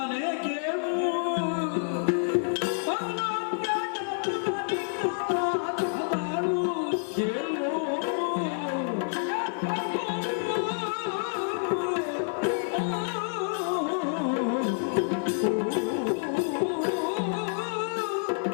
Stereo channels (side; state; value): right; silent; 59 dB below the other